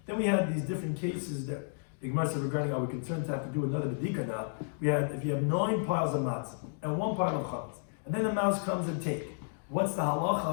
Then we had these different cases that the Gemara said regarding are we concerned to have to do another bedika now. We had if you have 9 piles of matzah and 1 pile of chametz, and then the mouse comes and take. What's the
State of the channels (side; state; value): right; silent; digital silence